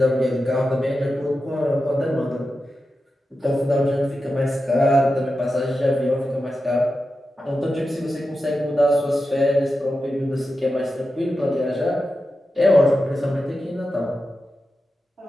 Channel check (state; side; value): normal; both; correlation 0.91